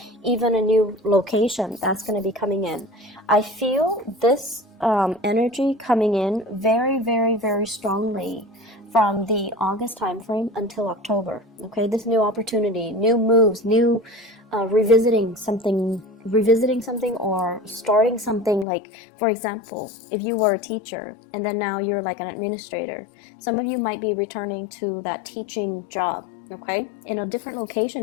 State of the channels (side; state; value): right; drops out; at 18.7 s